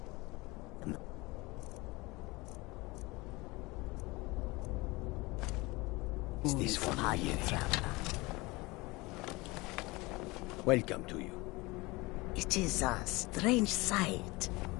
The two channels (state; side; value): quieter; right; 23.2 dB